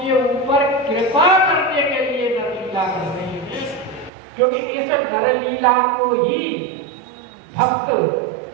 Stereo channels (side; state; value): left; drops out; at 4.1 s